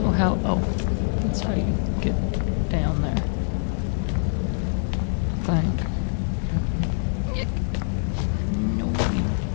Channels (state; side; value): silent; right; 57 dB below the other